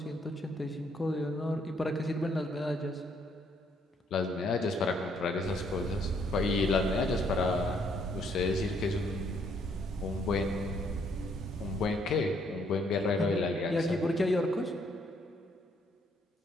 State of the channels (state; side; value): normal; both; correlation 0.69